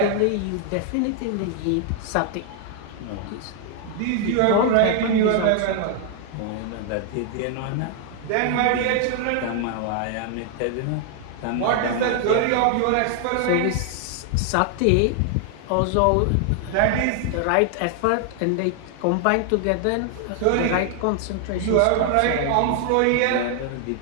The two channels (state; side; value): different; both; correlation 0.00